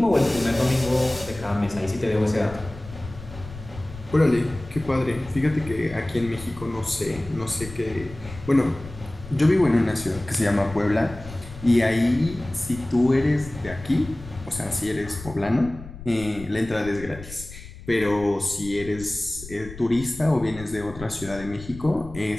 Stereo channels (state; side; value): noise; left; rumble, 14 dB below the sound